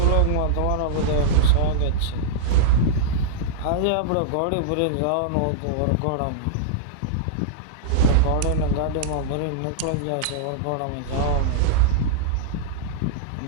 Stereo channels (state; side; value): different; both; correlation -0.02